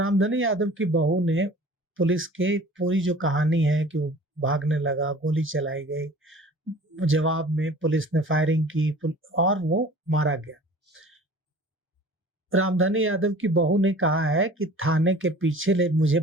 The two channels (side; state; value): both; normal; correlation 0.45